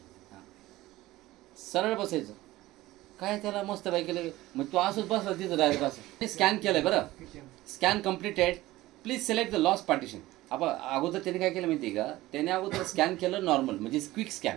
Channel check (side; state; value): left; quieter; 17.4 dB